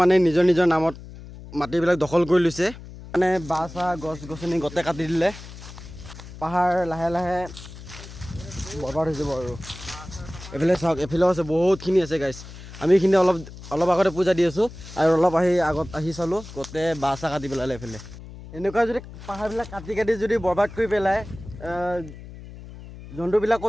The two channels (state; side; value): noise; left; hum, 15 dB below the sound